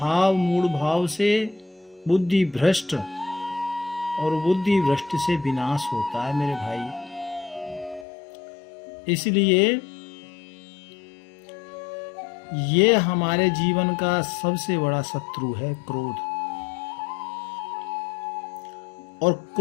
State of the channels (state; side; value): drops out; right; at 8.1 s